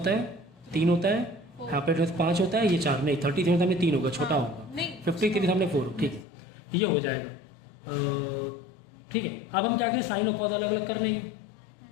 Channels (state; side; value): drops out; right; at 6.2 s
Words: है? 3 होता है। यहाँ पे 5 होता है, ये 4 नहीं, 37 सामने 3 होगा, छोटा होगा। नहीं। 53 सामने 4, ठीक है, ये हो जाएगा। ठीक है, अब हम क्या करें? साइन और कॉस अलग अलग कर लेंगे।